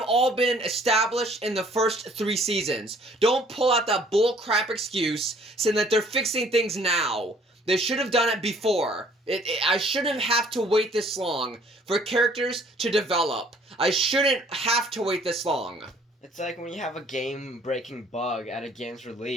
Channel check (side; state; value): both; normal; correlation 0.58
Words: all been established in the first 3 seasons. Don't pull out that bullcrap excuse saying that they're fixing things now. They should have done it before. I shouldn't have to wait this long for characters to develop. I shouldn't have to wait this long. It's like when you have a game-breaking bug at a game's